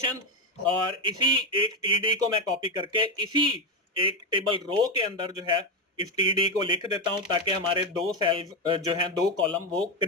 और इसी एक टीडी को मैं कॉपी करके इसी एक टेबल रो के अंदर जो है इस टीडी को लिख देता हूं ताकि हमारे दो सेल्स जो हैं दो कॉलम वो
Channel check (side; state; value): both; normal; correlation 0.10